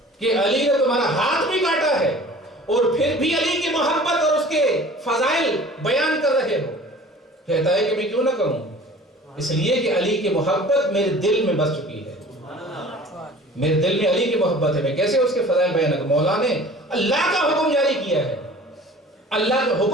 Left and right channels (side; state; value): both; normal; correlation 0.45